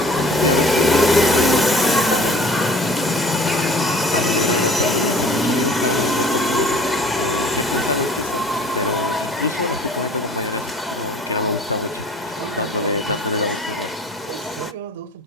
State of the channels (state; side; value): normal; both; correlation 0.48